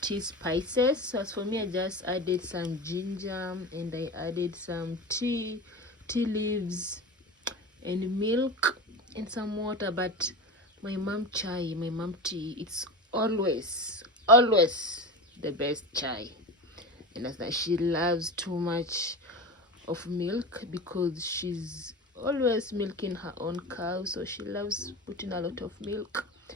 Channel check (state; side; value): normal; both; correlation 0.27